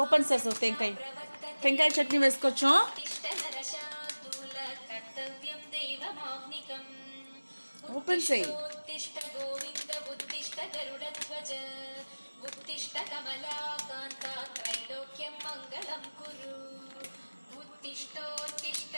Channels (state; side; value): inverted; both; correlation -1.00